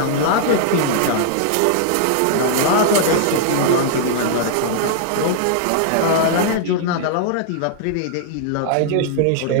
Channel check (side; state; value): both; different; correlation -0.01